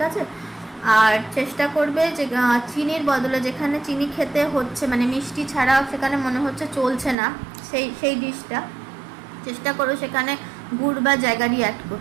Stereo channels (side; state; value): left; drops out; at 7.2 s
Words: আছে। আর চেষ্টা করবে যে চিনির বদলে, যেখানে চিনি খেতে হচ্ছে মানে মিষ্টি ছাড়া সেখানে মনে হচ্ছে চলছে না, সেই ডিশটা চেষ্টা করো সেখানে গুড় বা জ্যাগারি অ্যাড